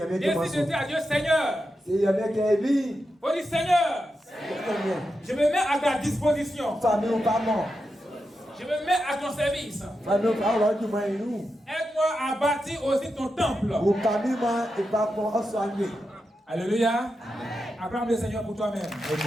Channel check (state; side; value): normal; both; correlation 0.88